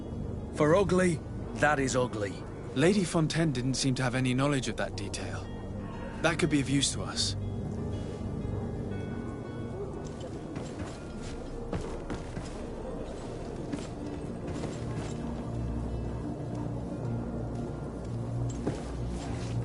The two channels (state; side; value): identical; both; correlation 1.00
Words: For ugly, that is ugly. Lady Fontaine didn't seem to have any knowledge of that detail. That could be of use to us.